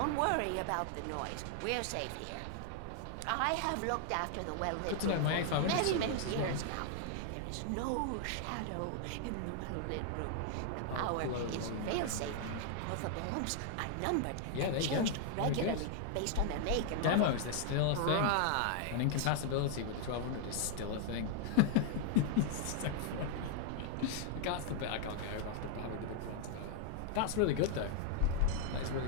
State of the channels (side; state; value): both; different; correlation 0.00